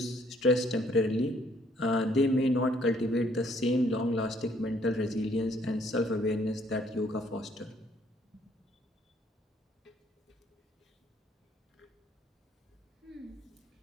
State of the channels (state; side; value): normal; both; correlation 0.65